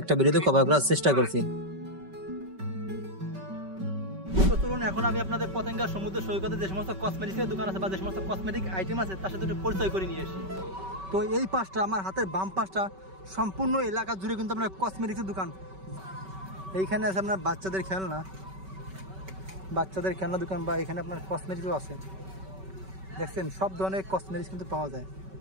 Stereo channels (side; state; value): left; late; 5.2 ms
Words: ভিডিওতে কভার করার চেষ্টা করছি। তো চলুন এখন আমি আপনাদের পতেঙ্গা সমুদ্র সৈকতে যে সমস্ত কসমেটিক্সের দোকান আছে বা যে সমস্ত কসমেটিক আইটেম আছে তার সাথে একটু পরিচয় করে নিয়ে আসি। তো এই পাশটা আমার হাতের বাম পাশটা সম্পূর্ণ এলাকা জুড়ে কিন্তু আপনার কসমেটিক্সের দোকান। এইখানে আছে আপনার বাচ্চাদের খেলনা দোকান বা এখানে আপনার কসমেটিক্সও আছে। দেখছেন সব ধরনের কসমেটিক্স কিন্তু পাওয়া যায়।